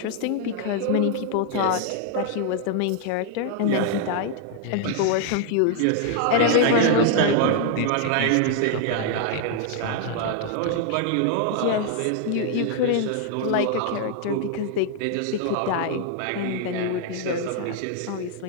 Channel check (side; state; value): both; different; correlation 0.00